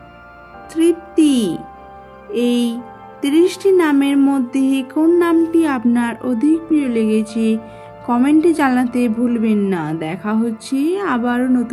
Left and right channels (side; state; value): both; identical; correlation 1.00